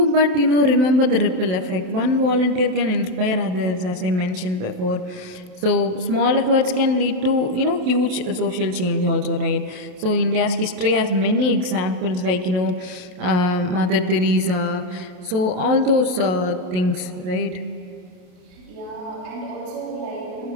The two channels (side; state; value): left; late; 28 ms